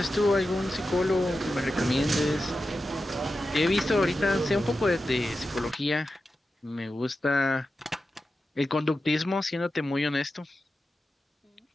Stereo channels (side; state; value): both; normal; correlation 0.91